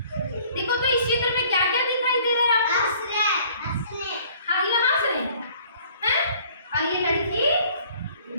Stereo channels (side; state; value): both; inverted; correlation -0.55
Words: देखो तो इस चित्र में क्या क्या दिखाई दे रहा है आपको? हाँ, ये हंस रहे हैं, हैं? और ये लड़की